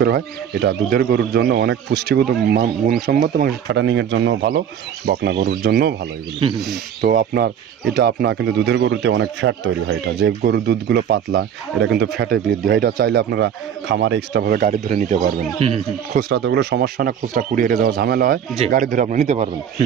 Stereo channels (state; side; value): quieter; left; 8.8 dB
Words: হয়। এটা দুধের গরুর জন্য অনেক পুষ্টিগত গুণসম্মত এবং ফ্যাটানিংয়ের জন্য ভালো, বকনা গরুর জন্যও ভালো এগুলো। তো আপনার এটা আপনার কিন্তু দুধের গরুতে অনেক ফ্যাট তৈরি হয়। এটা যে গরুর দুধগুলো পাতলা, এটা কিন্তু ফ্যাটে বৃদ্ধি হয়। এটা চাইলে আপনারা খামারে এক্সট্রাভাবে গাড়ি ধরে নিতে পারবেন। খুচরা তো ওগুলো সমস্যা না, খুচরা কুরিয়ারে যাওয়া ঝামেলা হয়, গাড়ি ধরে আপনি নিতে পারবেন।